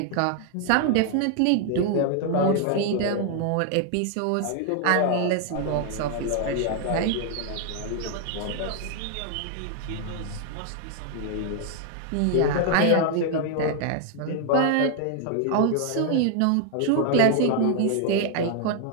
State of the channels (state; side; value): different; both; correlation 0.00